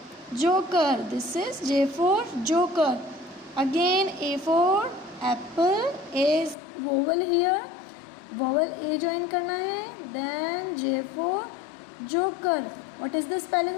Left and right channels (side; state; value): right; drops out; at 6.6 s